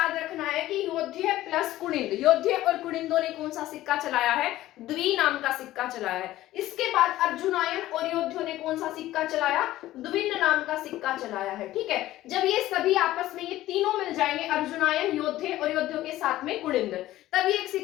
रखना है कि योद्धे प्लस कुनिंद, योद्धे और कुनिंदों ने कौन सा सिक्का चलाया है? द्वि नाम का सिक्का चलाया है। इसके बाद अर्जुनायन और योद्धियों ने कौन सा सिक्का चलाया? द्विन नाम का सिक्का चलाया है। ठीक है, जब ये सभी आपस में ये तीनों मिल जाएंगे, अर्जुनायन, योद्धे और योद्धियों के साथ में कुनिंद, तब ये एक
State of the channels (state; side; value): quieter; right; 15.2 dB